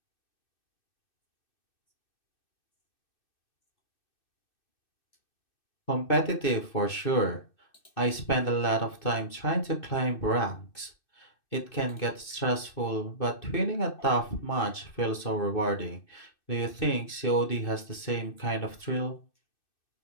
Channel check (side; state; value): right; late; 2.6 ms